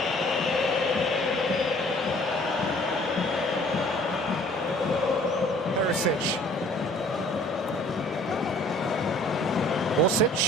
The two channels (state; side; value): normal; both; correlation 0.54